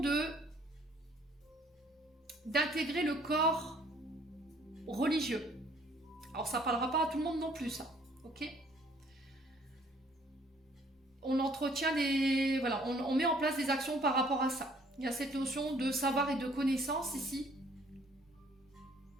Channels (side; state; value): both; normal; correlation 0.60